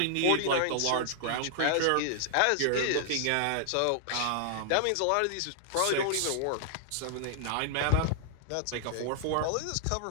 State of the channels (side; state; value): both; different; correlation 0.00